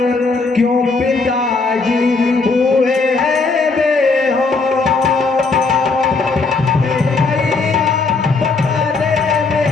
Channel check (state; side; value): quieter; right; 4.1 dB